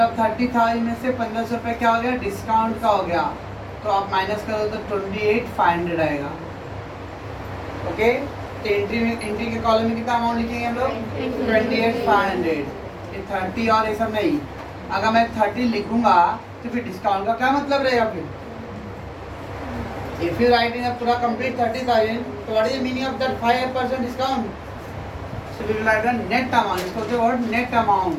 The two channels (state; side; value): identical; both; correlation 1.00